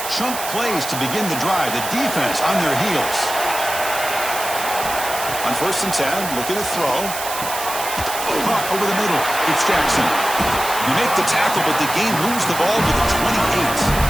chunk plays to begin the drive. The defense on their heels. On first and 10, looking to throw. Caught over the middle. It's Jackson. You make the tackle, but the game moves the ball to the 28.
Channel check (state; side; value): noise; right; hiss, 7 dB below the sound